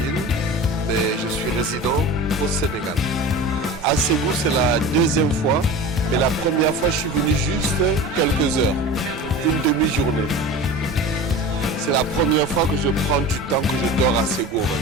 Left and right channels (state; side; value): normal; both; correlation 0.34